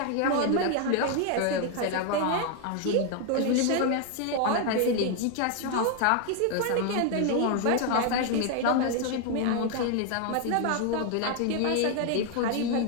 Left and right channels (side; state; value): both; different; correlation 0.01